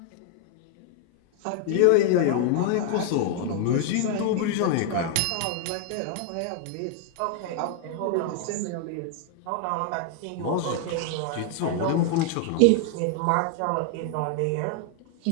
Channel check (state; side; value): different; both; correlation 0.00